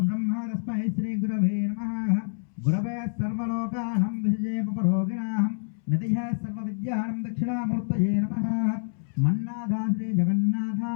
తస్మై శ్రీ గురవే నమః। గురవే సర్వలోకానాం విషయే పరోగిణాం నదిః సర్వవిద్యానాం దక్షిణామూర్తయే నమః। మన్నాథ శ్రీ జగన్నాథ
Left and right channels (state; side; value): silent; right; 60 dB below the other